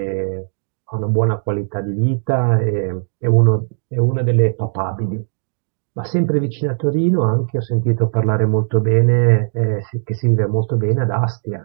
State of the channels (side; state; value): left; silent; digital silence